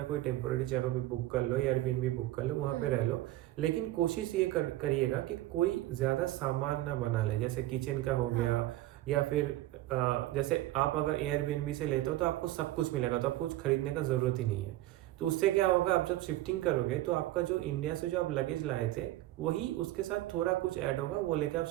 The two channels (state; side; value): quieter; left; 15.8 dB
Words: कोई टेम्पोरेरी जगह भी बुक कर लो, एयरबीएनबी बुक कर लो, वहाँ पे रह लो। लेकिन कोशिश ये करिएगा कि कोई ज़्यादा सामान ना बना ले, जैसे किचन का हो हाँ, गया, या फिर जैसे आप अगर एयरबीएनबी से लेते हो तो आपको सब कुछ मिलेगा, तो आपको कुछ खरीदने का ज़रूरत ही नहीं है। तो उससे क्या होगा, आप जब शिफ्टिंग करोगे तो आपका जो इंडिया से जो आप लगेज लाए थे, वही उसके साथ थोड़ा कुछ ऐड होगा, वो लेके आप